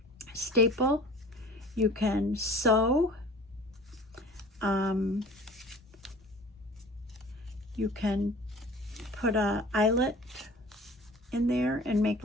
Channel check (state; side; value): normal; both; correlation 0.44